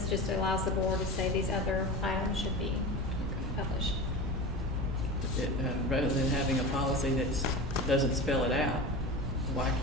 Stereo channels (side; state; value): both; normal; correlation 0.29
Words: just allows the board to say these other items should be published. Rather than having a policy that doesn't spell it out, why